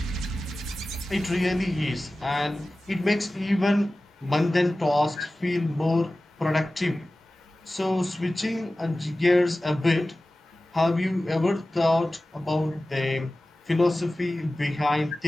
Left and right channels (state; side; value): normal; both; correlation 0.96